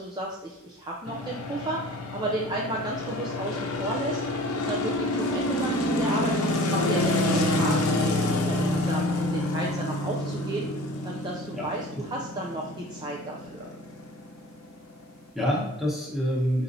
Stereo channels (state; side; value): normal; both; correlation 0.43